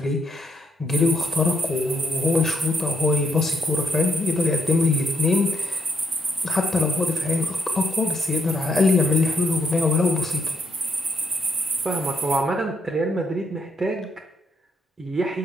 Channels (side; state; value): both; normal; correlation 0.75